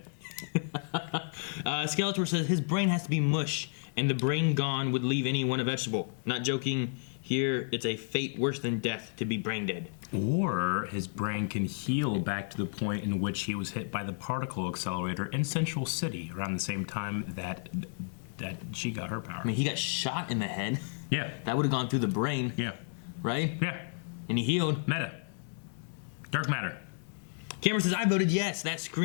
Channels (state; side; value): silent; right; digital silence